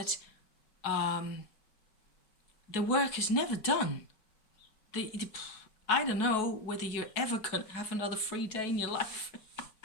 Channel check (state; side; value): late; right; 4.7 ms